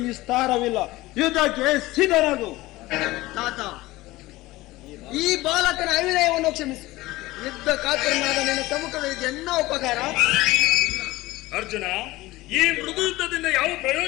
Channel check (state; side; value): quieter; right; 18.9 dB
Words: ನಿಸ್ತಾರವಿಲ್ಲ. ಯುದ್ಧಕ್ಕೆ ಸಿದ್ಧನಾಗು. ತಾತ, ಈ ಬಾಲಕನ ಅವಿನಯವನ್ನು ಕ್ಷಮಿಸು. ಯುದ್ಧ ಕಾತರನಾದ ನಿನ್ನ ಸಮ್ಮುಖದಲ್ಲಿ ಎನ್ನ ಉಪಕಾರ. ಅರ್ಜುನ, ಈ ಮೃದು ಯುದ್ಧದಿಂದ ಯಾವ